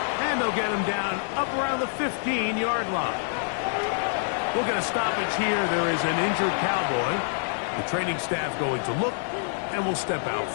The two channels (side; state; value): right; silent; 61 dB below the other